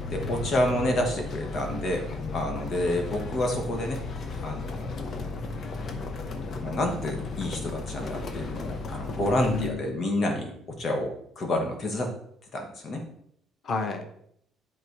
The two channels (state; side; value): normal; both; correlation 0.71